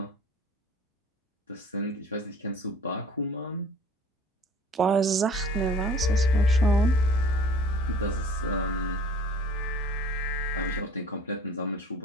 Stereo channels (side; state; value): both; normal; correlation 0.48